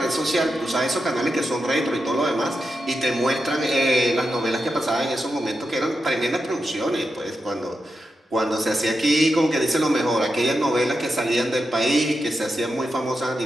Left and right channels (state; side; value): normal; both; correlation 0.88